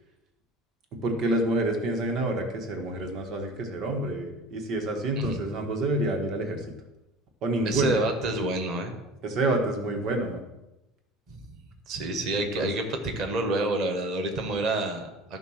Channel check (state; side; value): normal; both; correlation 0.40